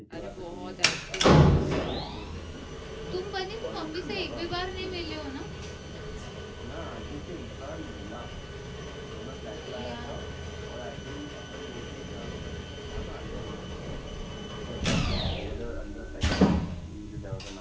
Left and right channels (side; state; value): both; identical; correlation 1.00